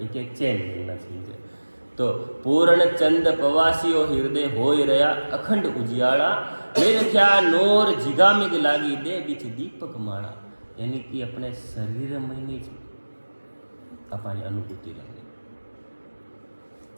एक चैन मिलना चाहिए। तो पूर्ण चंद पवासियो हृदय होय रया अखंड उजियाड़ा मेरे क्या नोर जिगामिग लागी दे बीच दीपक माड़ा। यानी कि अपने शरीर में नहीं अपनी अनुभूति रहनी।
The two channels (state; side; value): inverted; both; correlation -1.00